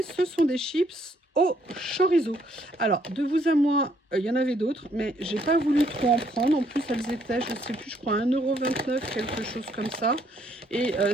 Ce sont des chips au chorizo. Alors, de vous à moi, il y en avait d'autres, mais j'ai pas voulu trop en prendre. En plus, elles étaient, je sais plus, je crois 1,29 €, quelque chose comme ça. Et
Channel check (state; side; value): normal; both; correlation 0.68